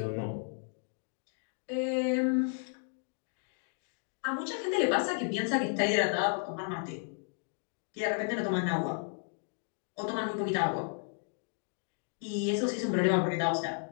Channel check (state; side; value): silent; right; 55 dB below the other